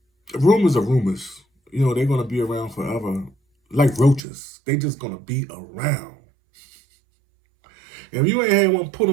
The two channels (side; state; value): left; drops out; at 4.2 s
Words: rumors are rumors. They're gonna be around forever, like roaches. They just gonna be around. If you ain't had one put